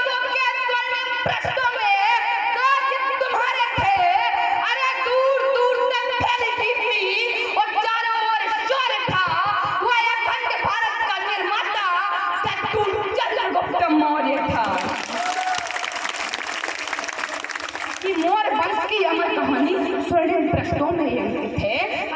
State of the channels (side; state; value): both; identical; correlation 1.00